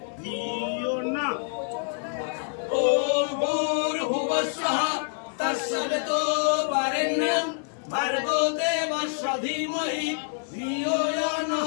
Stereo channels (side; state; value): right; silent; 60 dB below the other